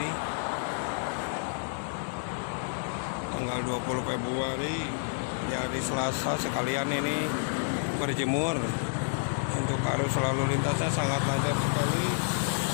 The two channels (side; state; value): right; silent; digital silence